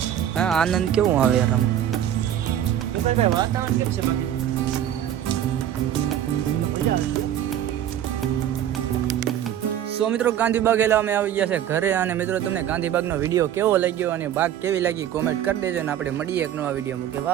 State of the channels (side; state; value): left; quieter; 10.7 dB